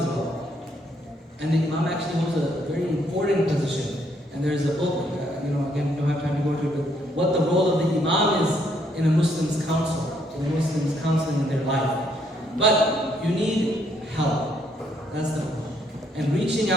well. And the imam actually holds a very important position. And there's a book, again, we don't have time to go into it, but what the role of the imam is in a Muslim's counsel, in a Muslim's counseling in their life. But you need help. That's the point. And reaching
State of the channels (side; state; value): both; normal; correlation 0.71